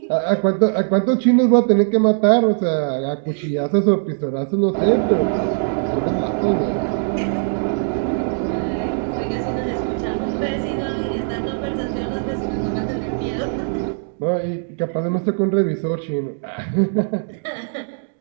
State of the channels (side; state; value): left; silent; digital silence